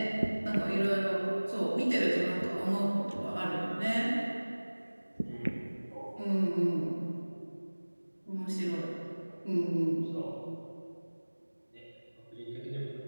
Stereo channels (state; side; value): inverted; both; correlation -1.00